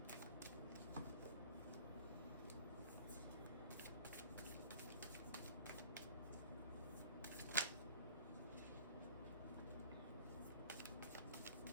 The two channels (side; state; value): both; inverted; correlation -0.45